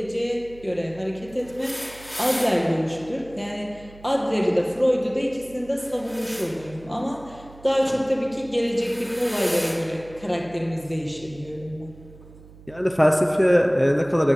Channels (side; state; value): right; noise; hum, 21 dB below the sound